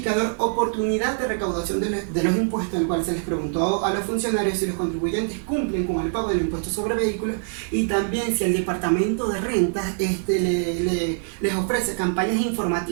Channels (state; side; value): silent; left; 63 dB below the other